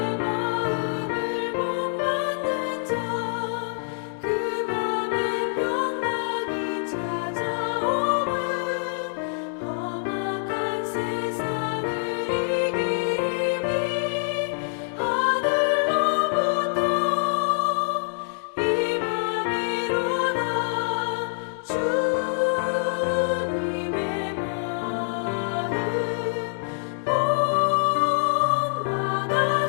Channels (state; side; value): silent; right; digital silence